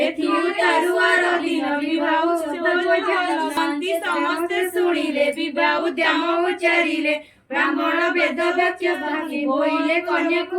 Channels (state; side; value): identical; both; correlation 1.00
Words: ଏଥି ଉତାରୁଆର ଦିନ ବିବାହ ଶାନ୍ତି ସମସ୍ତେ ଶୁଣିଲେ ବିବାହ ଉଦ୍ୟମ ଉଚ୍ଚାରିଲେ ବ୍ରାହ୍ମଣ ବେଦ ବାକ୍ୟ ଭାଙ୍ଗି ବୋଇଲେ କନ୍ୟାକୁ